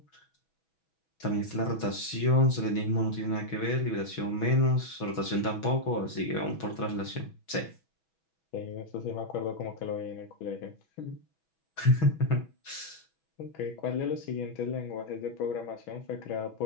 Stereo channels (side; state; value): right; late; 6.2 ms